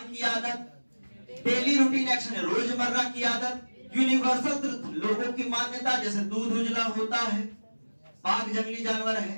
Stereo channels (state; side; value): inverted; both; correlation -1.00